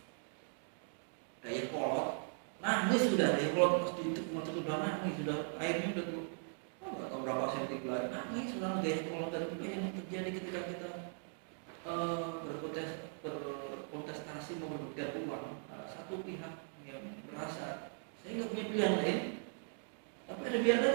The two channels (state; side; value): silent; left; 52 dB below the other